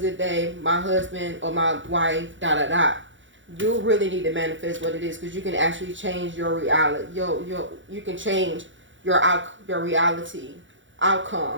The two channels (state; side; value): late; left; 0.55 ms